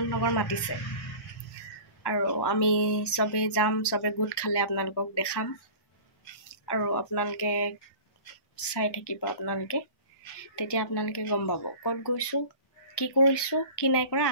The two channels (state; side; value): late; right; 1.2 ms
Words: নগৰ মাতিছে আৰু আমি চবেই যাম, চবে গোট খালে আপোনালোকক দেখাম আৰু আপোনালোকে চাই থাকিব। তেতিয়া আপোনালোকে গম পাব ক'ত গৈছোঁ, কি কৰিছোঁ, কি নাই কৰা।